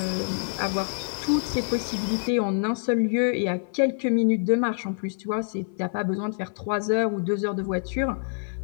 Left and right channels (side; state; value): right; silent; 61 dB below the other